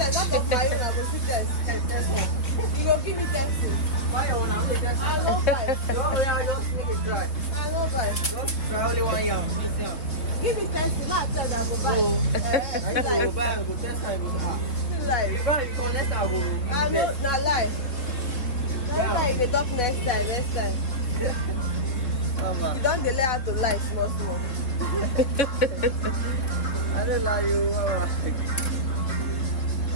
not for fire. That one. You go give me pencil. Fire one. I'm going that one. I don't buy. Yeah, just make it dry. I don't go buy. Just try only 1 year. Miss yam. Give me 10, not tell them I go buy. So, I Like, go buy, I go test, I go ah. like, If I come next time, I go I give know, it. not lie. Yeah. Like, they talk next time. You don't delay how to lie, small. I don't lie you.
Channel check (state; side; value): late; right; 4.0 ms